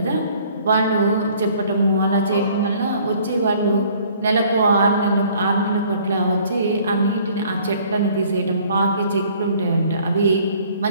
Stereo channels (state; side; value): inverted; both; correlation -0.57